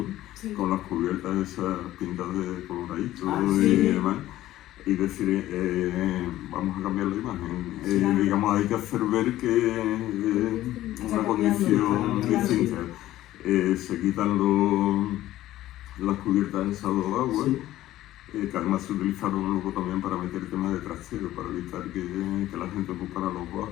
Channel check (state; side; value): quieter; right; 14.6 dB